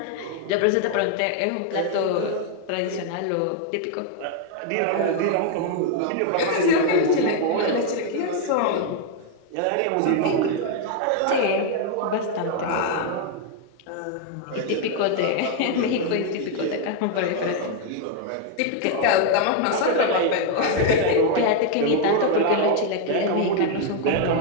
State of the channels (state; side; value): different; both; correlation 0.00